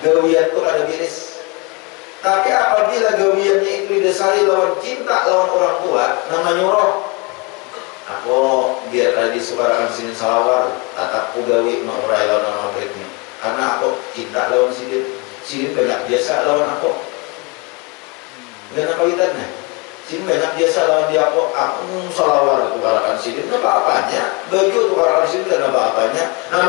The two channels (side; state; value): right; quieter; 29.0 dB